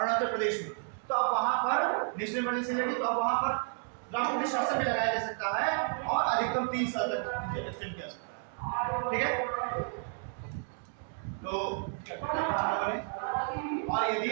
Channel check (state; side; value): silent; left; 57 dB below the other